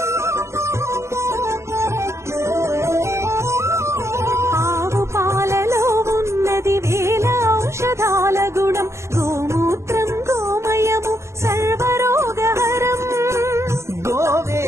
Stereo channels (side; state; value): left; late; 0.13 ms